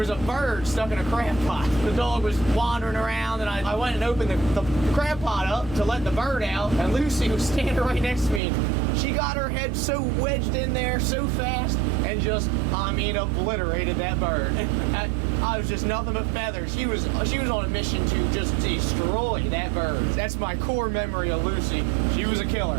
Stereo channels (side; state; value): left; drops out; at 8.4 s